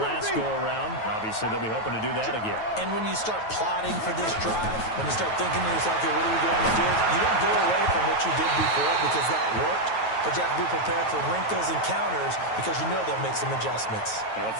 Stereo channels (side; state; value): right; late; 9.2 ms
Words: go-around. Obviously, they'll be hoping to do that again. And when you start plotting for this drive, when you start thinking to yourself, okay, what are we going to do? You don't go away from what you did before because that worked. But you have to be prepared for wrinkles and counters because you know they'll make some adjustments. Now, the